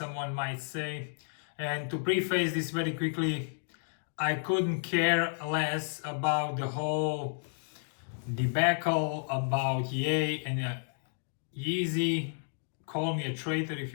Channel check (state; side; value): silent; right; digital silence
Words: might say. And to preface this very quickly, I couldn't care less about the whole debacle about Ye and Yeezy. Call me a traitor if